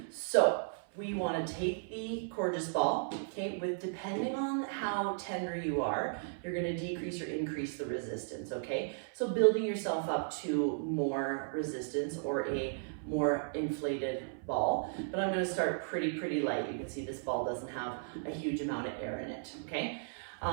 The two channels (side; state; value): left; silent; 54 dB below the other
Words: So we want to take the courgeous ball, okay, with depending on how tender you are, you're going to decrease or increase the resistance, okay? So building yourself up to more resistance or a more inflated ball, but I'm going to start pretty light. You can see this ball doesn't have a huge amount of air in it, okay?